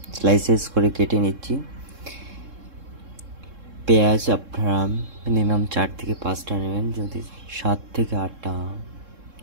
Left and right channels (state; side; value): late; left; 3.7 ms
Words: স্লাইসেস করে কেটে নিচ্ছি। পেঁয়াজ আপনারা মিনিমাম 4 থেকে 5টা নেবেন, যদি 7 থেকে 8টা